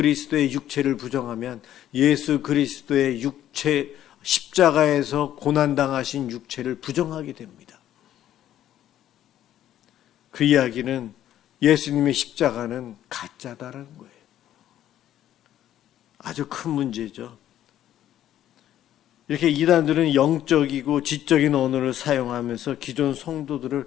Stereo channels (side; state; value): right; quieter; 11.9 dB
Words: 육체를 부정하면 예수 그리스도의 육체, 십자가에서 고난당하신 육체를 부정하게 됩니다. 그 이야기는 예수님의 십자가는 가짜다라는 거예요. 아주 큰 문제죠. 이렇게 이단들은 영적이고 지적인 언어를 사용하면서 기존